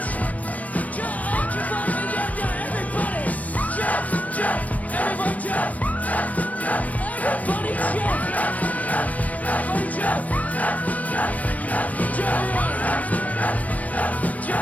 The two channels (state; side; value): late; right; 0.070 ms